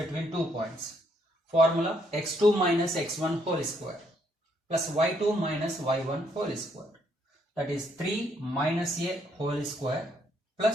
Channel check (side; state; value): both; normal; correlation 0.71